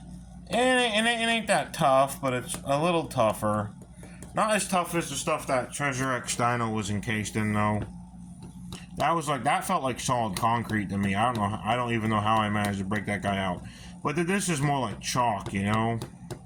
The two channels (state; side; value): identical; both; correlation 1.00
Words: ain't that tough, but it's a little tougher. Not as tough as the stuff that Treasure X Dino was encased in, though. That felt like solid concrete to me. I don't even know how I managed to break that guy out. But this is more like chalk, you know?